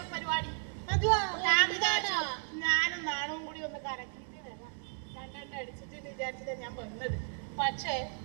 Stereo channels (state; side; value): silent; left; 55 dB below the other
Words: പരിപാടി. അതുവാ ഞാൻ വിചാരിച്ചു ഞാനും നാണവും കൂടി ഒന്ന് കറക്കിയിട്ട് വരാം. രണ്ടെണ്ണം അടിച്ചിട്ട് വിചാരിച്ചിട്ട് ഞാൻ വന്നത്. പക്ഷേ